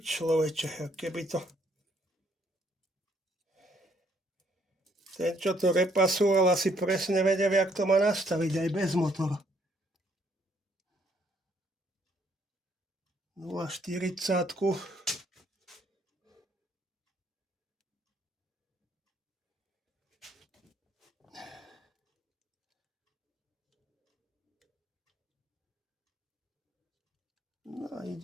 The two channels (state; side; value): normal; both; correlation 0.67